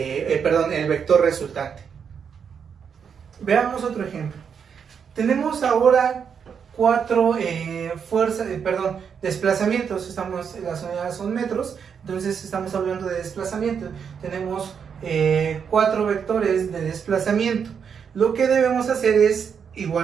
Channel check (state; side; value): quieter; left; 7.0 dB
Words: vector resultante. Veamos otro ejemplo. Tenemos ahora 4 desplazamientos. Las unidades son metros, entonces estamos hablando de desplazamiento. Tenemos 4 vectores de desplazamiento. Lo que debemos hacer es